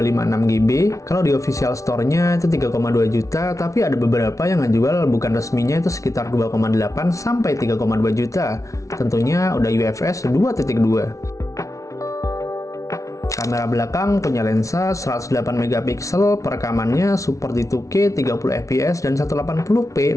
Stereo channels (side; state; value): right; late; 0.15 ms